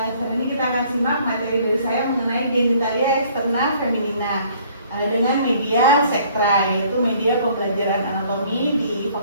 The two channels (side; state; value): both; inverted; correlation -0.58